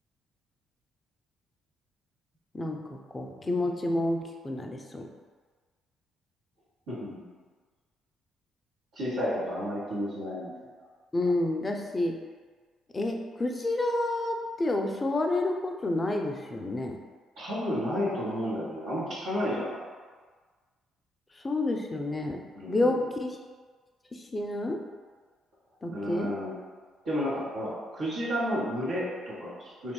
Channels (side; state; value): both; normal; correlation 0.81